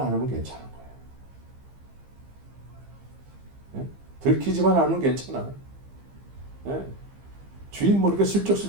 괜찮은 거예요. 들키지만 않으면 괜찮아. 주인 모르게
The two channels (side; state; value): left; late; 15 ms